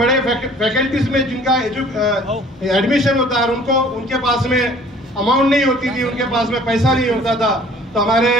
फैकल्टीज में जिनका एडमिशन होता है, उनको उनके पास में अमाउंट नहीं होती थी, उनके पास में पैसा नहीं होता था, तो हमारे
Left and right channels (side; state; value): both; normal; correlation 0.52